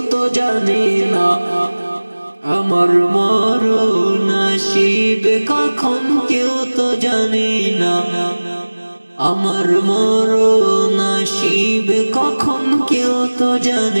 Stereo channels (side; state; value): both; inverted; correlation -1.00